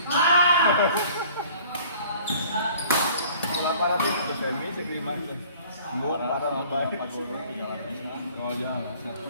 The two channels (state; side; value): inverted; both; correlation -0.51